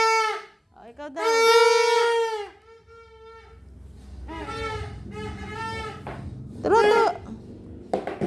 Oh, ikaw daw. Turo.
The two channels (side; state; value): both; identical; correlation 1.00